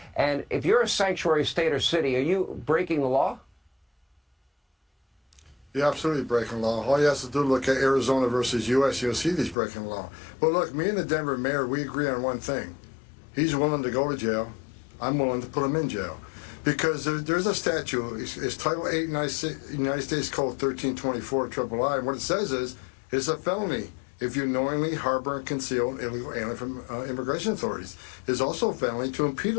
And if you're a sanctuary state or city, are you breaking the law? You're absolutely breaking law. All you have to do is look at Arizona versus U.S. You'll see these breaking law. But look, me and the Denver mayor, we agree on one thing. He's willing to go to jail. I'm willing to put him in jail. Because there's a statute, it's Title 8 United States Code 1324 III, and what it says is, it's a felony if you knowingly harbor and conceal an illegal alien from immigration authorities. It's also a felony to impede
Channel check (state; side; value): drops out; right; at 9.6 s